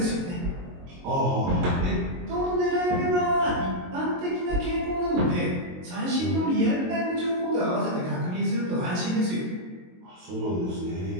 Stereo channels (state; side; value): late; left; 22 ms